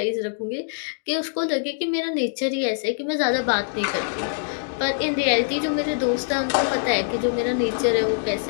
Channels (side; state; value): right; silent; digital silence